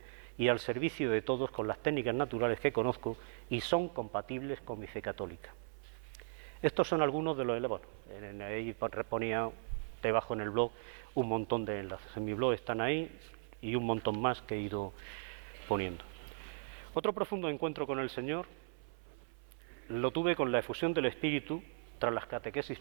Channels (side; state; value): left; silent; 53 dB below the other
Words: y al servicio de todos con las técnicas naturales que conozco y son compatibles con mi fe católica. Estos son algunos de los... Bueno, ahí ponía debajo en el blog un montón de enlaces. En mi blog están ahí, y un montón más que he ido poniendo. Otro profundo encuentro con el Señor lo tuve con la efusión del Espíritu tras las catequesis